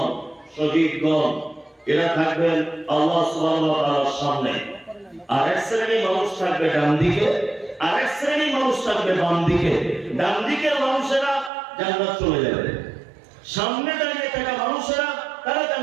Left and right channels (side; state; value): left; drops out; at 11.5 s